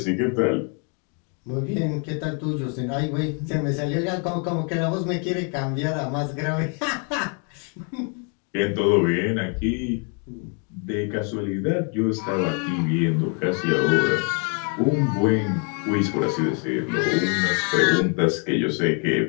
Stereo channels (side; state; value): right; quieter; 39.1 dB